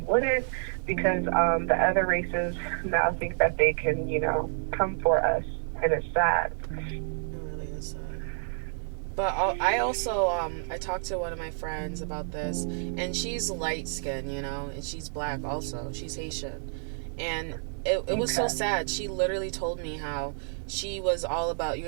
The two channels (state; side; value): silent; left; digital silence